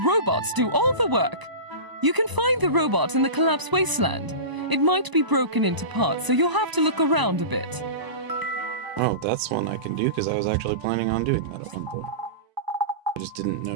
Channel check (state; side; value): late; left; 1.0 ms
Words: robots do all the work. You can find the robot in the collapsed wasteland. It might be broken into parts, so you'll have to look around a bit. Oh, that's one I can do, because I was actually planning on doing that at one point. I just didn't